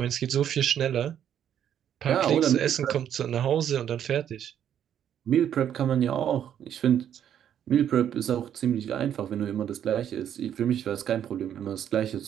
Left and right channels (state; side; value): quieter; left; 9.7 dB